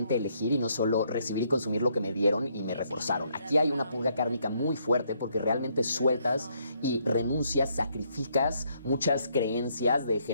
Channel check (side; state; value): both; inverted; correlation -0.72